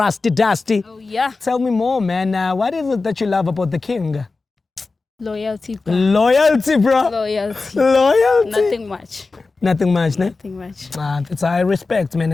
Dusty. Oh, yeah. Tell me more, man. What is it that you love about the King? Loyalty, bro. Loyalty, bro. Loyalty. Loyalty. Nothing much. Nothing much, ne? Nothing much. It's I respect, man,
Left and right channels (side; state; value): right; quieter; 3.9 dB